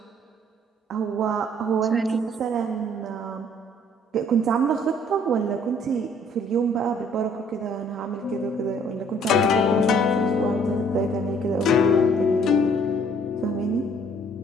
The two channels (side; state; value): both; normal; correlation 0.60